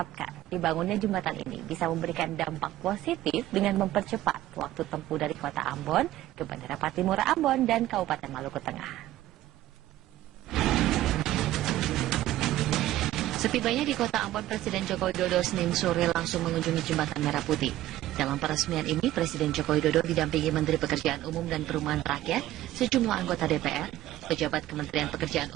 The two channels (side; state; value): left; quieter; 14.6 dB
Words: dibangunnya jembatan ini bisa memberikan dampak positif dengan mempercepat waktu tempuh dari kota Ambon ke Bandara Patimura Ambon dan Kabupaten Maluku Tengah. Setibanya di kota Ambon, Presiden Joko Widodo Senin sore langsung mengunjungi Jembatan Merah Putih. Dalam peresmian ini, Presiden Joko Widodo didampingi Menteri Pekerjaan Umum dan Perumahan Rakyat, sejumlah anggota DPR, pejabat Kementerian Pekerjaan